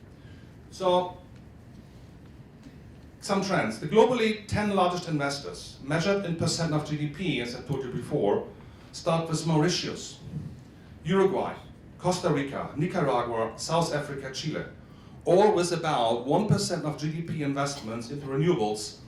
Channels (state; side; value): identical; both; correlation 1.00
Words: So, some trends. The globally 10 largest investors, measured in percent of GDP, as I told you before, start with Mauritius, Uruguay, Costa Rica, Nicaragua, South Africa, Chile, all with about 1% of GDP investments into renewables